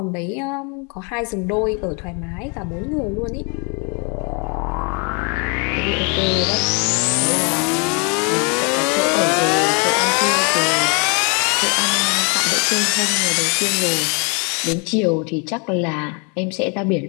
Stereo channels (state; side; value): quieter; right; 34.3 dB